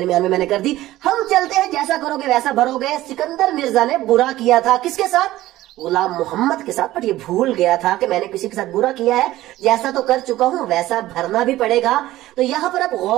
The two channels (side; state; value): left; quieter; 15.8 dB